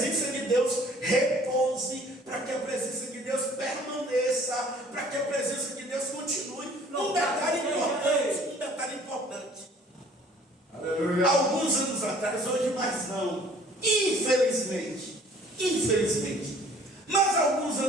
de Deus repouse, para que a presença de Deus permaneça, para que a presença de Deus continue. Um detalhe importante. Aleluia. Alguns anos atrás, hoje mais não, infelizmente, mas alguns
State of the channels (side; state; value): both; normal; correlation 0.54